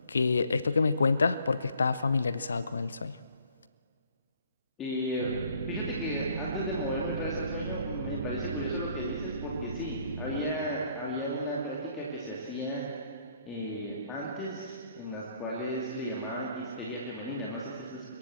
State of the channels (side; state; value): both; inverted; correlation -0.62